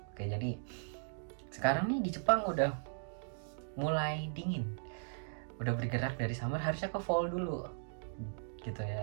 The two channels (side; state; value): left; silent; digital silence